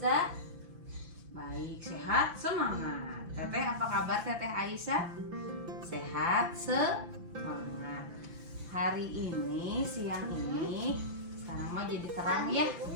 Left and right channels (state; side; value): late; left; 5.9 ms